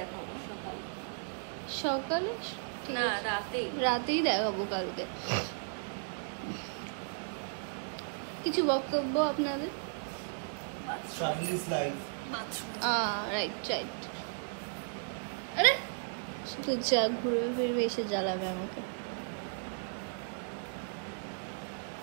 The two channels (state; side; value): silent; left; digital silence